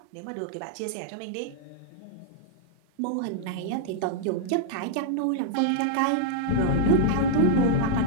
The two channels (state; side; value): different; both; correlation -0.01